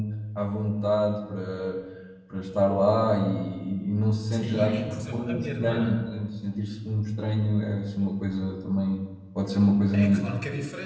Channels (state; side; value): identical; both; correlation 1.00